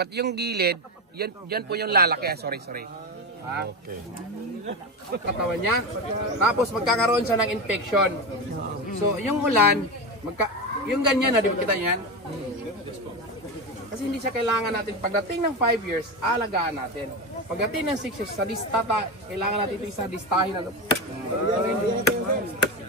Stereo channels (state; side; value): normal; both; correlation 0.18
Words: yung gilid, yan po yung lalaki. Sorry. Ha? Okay. Katawan niya. Tapos magkakaroon siya ng infection. So, yung ulan, yung ganyan na, di ba kita yan? Kasi hindi siya kailangan natin, pagdating ng 5 years, alagaan natin. Pagdating ng 6 years, sa distata, kailangan natin ito isa distahin na.